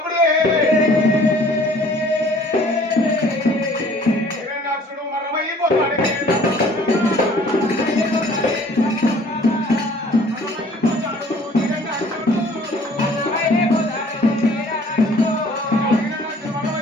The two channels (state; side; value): normal; both; correlation 0.54